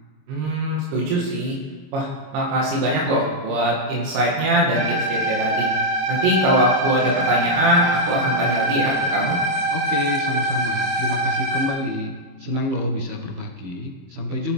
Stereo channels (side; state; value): left; late; 22 ms